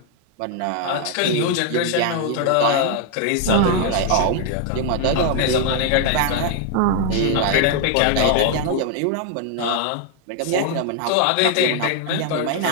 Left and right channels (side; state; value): both; different; correlation 0.00